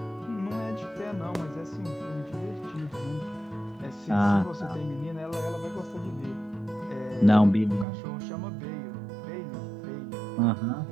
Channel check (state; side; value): drops out; left; at 7.9 s